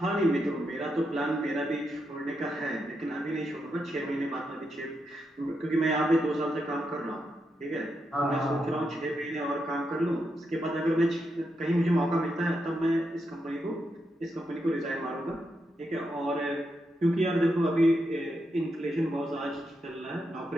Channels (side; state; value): both; normal; correlation 0.83